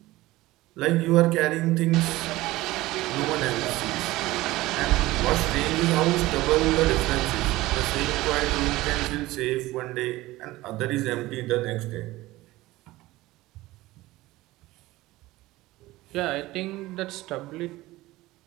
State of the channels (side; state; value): left; quieter; 18.3 dB